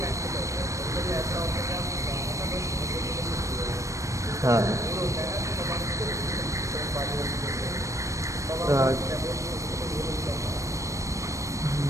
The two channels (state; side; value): late; left; 0.15 ms